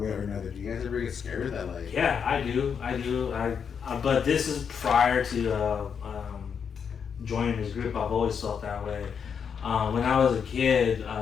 or another, do you guys ever get scared of that? Like, yeah, I do. But this is prior to joining this group. I've always felt that way. When I was a kid,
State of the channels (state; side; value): quieter; right; 6.9 dB